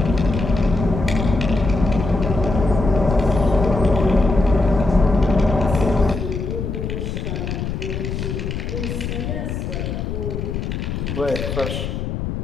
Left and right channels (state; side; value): noise; left; rumble, 4 dB below the sound